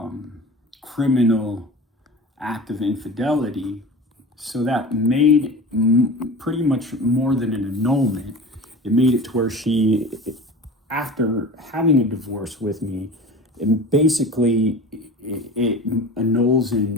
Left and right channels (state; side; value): normal; both; correlation 0.35